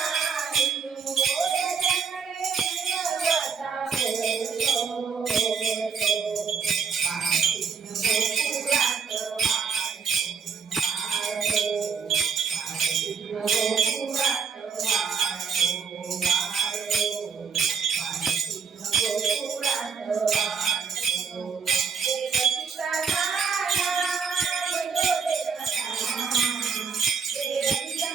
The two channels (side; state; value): left; quieter; 6.0 dB